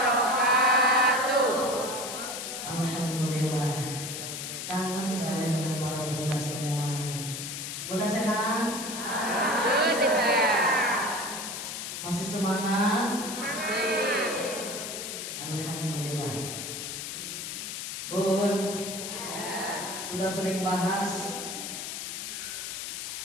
Alhamdulillah, kangen saya dengan para bunda semua. Bunda sehat? Alhamdulillah. Masih semangat? Masih. Alhamdulillah. Bun, sudah sering bahas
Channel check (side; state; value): left; noise; hiss, 6 dB below the sound